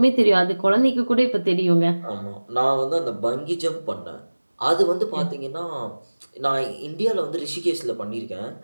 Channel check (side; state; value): both; inverted; correlation -1.00